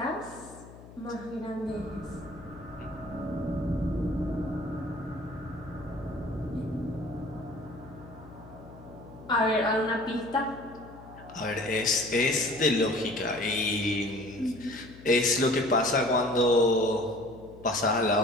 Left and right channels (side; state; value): left; noise; hum, 18 dB below the sound